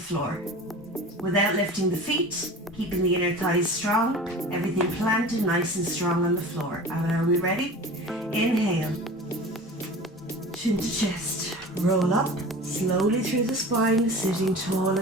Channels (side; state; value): both; normal; correlation 0.37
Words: without lifting the feet, keeping the inner thighs strong, everything planted nice and strong on the floor. And are we ready? Inhale, chin to chest, roll up slowly through the spine, sitting tall